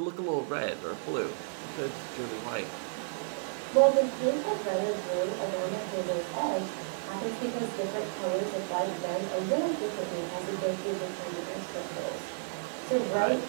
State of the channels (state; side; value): silent; left; digital silence